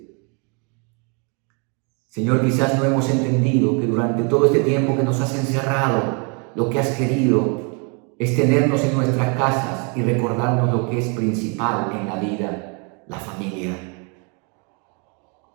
Señor, quizás no hemos entendido que durante todo este tiempo que nos has encerrado, lo que has querido es tenernos en nuestras casas y recordarnos lo que es principal en la vida, la familia.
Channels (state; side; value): quieter; left; 35.3 dB